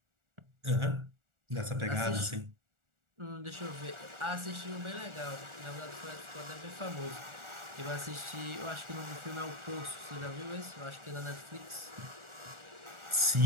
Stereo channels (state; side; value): late; left; 1.4 ms